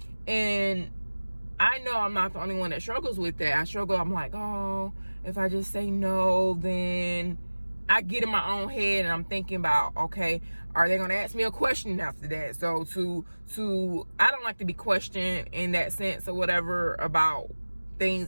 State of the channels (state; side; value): inverted; both; correlation -1.00